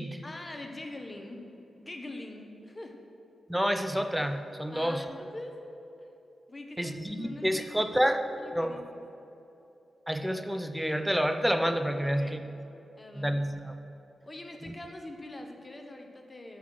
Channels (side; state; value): both; normal; correlation 0.97